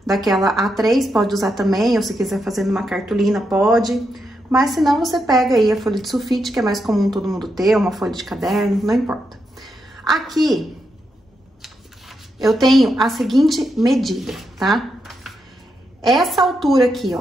daquela A3, pode usar também, ou se quiser fazer numa cartolina, pode. Mas se não, você pega aí a folha de sulfite, que é mais comum todo mundo ter, uma folha de caderno, não importa. Aqui, eu tenho a seguinte medida, tá? Essa altura aqui,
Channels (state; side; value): normal; both; correlation 0.83